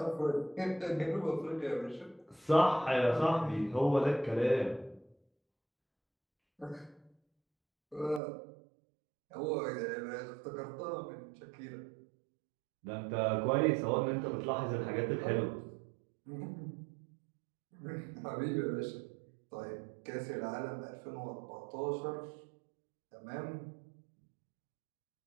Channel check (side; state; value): left; drops out; at 8.2 s